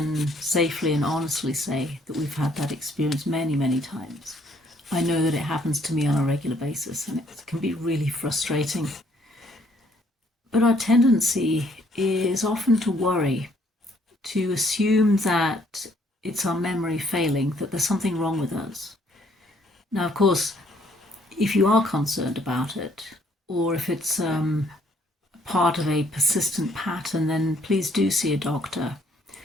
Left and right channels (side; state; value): both; normal; correlation 0.65